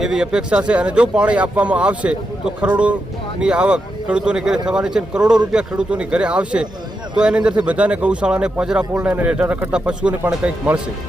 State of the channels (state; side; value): normal; both; correlation 0.85